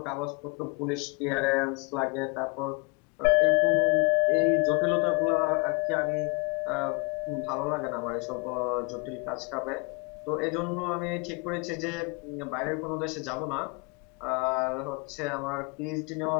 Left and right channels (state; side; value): quieter; right; 31.0 dB